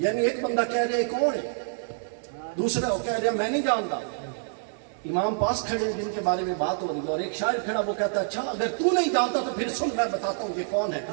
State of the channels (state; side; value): silent; left; 60 dB below the other